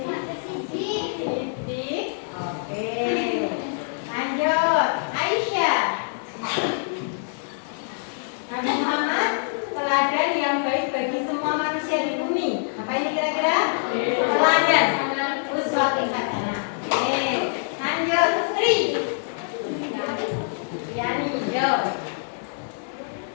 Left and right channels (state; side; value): silent; right; digital silence